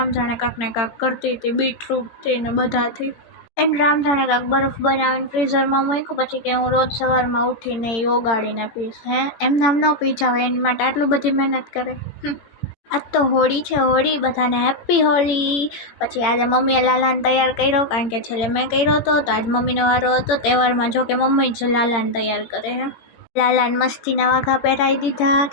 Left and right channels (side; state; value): right; late; 18 ms